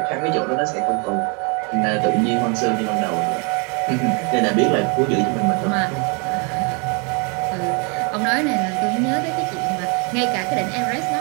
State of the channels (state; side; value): quieter; left; 33.9 dB